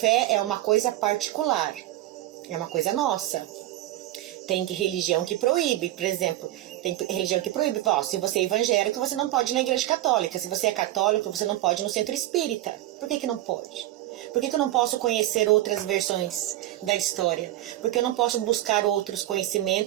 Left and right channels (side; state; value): left; quieter; 15.3 dB